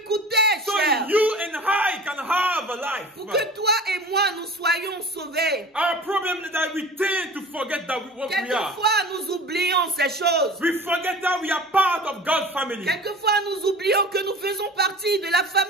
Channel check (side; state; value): both; normal; correlation 0.39